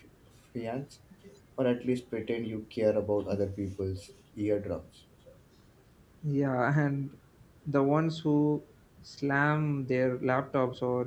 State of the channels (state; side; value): identical; both; correlation 1.00